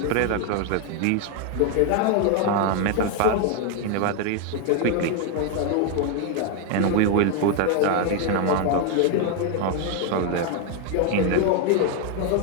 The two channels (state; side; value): different; both; correlation 0.01